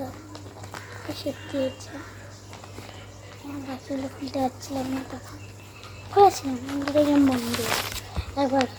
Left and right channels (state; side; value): identical; both; correlation 1.00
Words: এসে দিয়েছে। বাকিগুলো খুলতে পারছিলাম না তখন খুলেছিলাম দেখলাম বন্ধ একবার